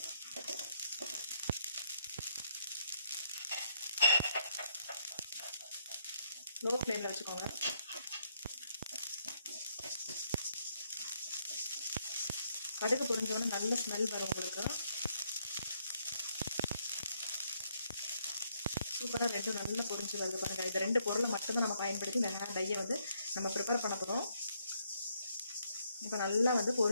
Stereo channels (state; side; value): inverted; both; correlation -0.73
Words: லோ ஃப்ளேமில் வச்சுக்கோங்க. கடுகு பொரிஞ்சோன்னு நல்ல ஸ்மெல் வரும் உங்களுக்கு. சூப்பராக நல்லா பொரிஞ்சு வருது பாருங்க. இந்த ரெண்டு பொருளை மட்டும்தான் நம்ம பயன்படுத்தி இந்த ஹேர் டையை நம்ம ப்ரிப்பேர் பண்ண போகிறோம். இப்போ நல்லா